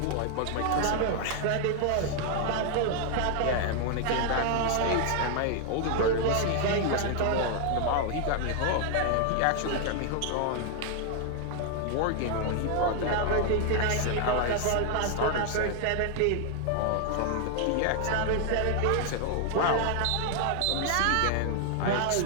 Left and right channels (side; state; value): both; different; correlation 0.00